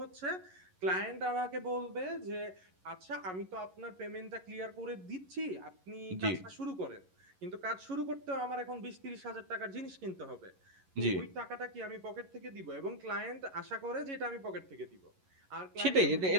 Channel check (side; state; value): left; late; 11 ms